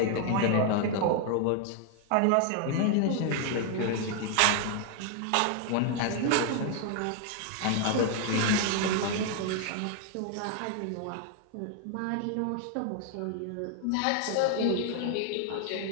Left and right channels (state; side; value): different; both; correlation 0.00